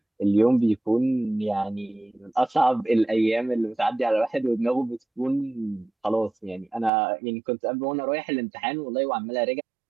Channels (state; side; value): drops out; left; at 6.9 s